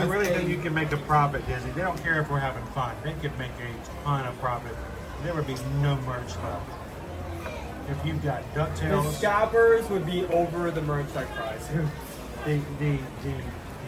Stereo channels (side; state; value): both; identical; correlation 1.00